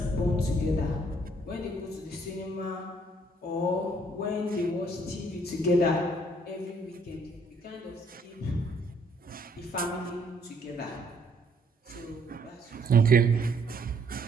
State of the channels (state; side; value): normal; both; correlation 0.65